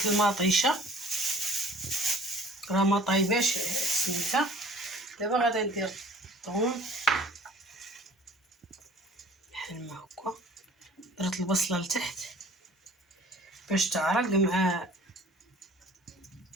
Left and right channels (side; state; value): both; normal; correlation 0.49